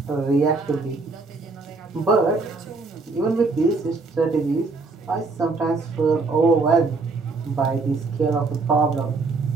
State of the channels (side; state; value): left; quieter; 3.8 dB